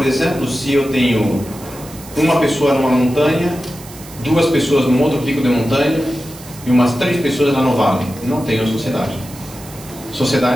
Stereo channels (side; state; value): right; noise; hiss, 18 dB below the sound